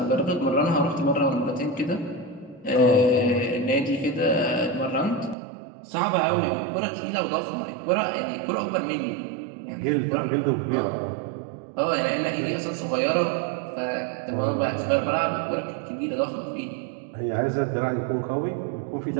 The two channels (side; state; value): left; drops out; at 5.4 s